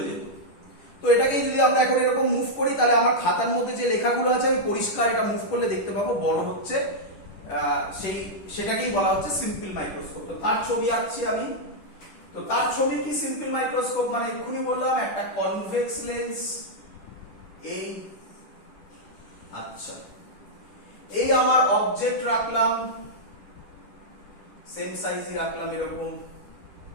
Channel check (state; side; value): late; right; 10 ms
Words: যেত। তো এটাকেই যদি আমরা এখন এরকম মুভ করি, তাহলে আমার খাতার মধ্যে যে লেখাগুলো আছে আমি পরিষ্কার এটা মুভ করলে দেখতে পাবো বড় হচ্ছে, সেটাকেই বলা হচ্ছে সিম্পল মাইক্রোস্কোপ। তো তার ছবি আঁকছি আমি। তো তার ছবি কি সিম্পল মাইক্রোস্কোপ? মানে এক্ষুনি বললাম একটা কনভেক্স লেন্স, এই, আচ্ছা, এই আমার অবজেক্ট রাখলাম, সেম সাইজই রাখলাম এরকম,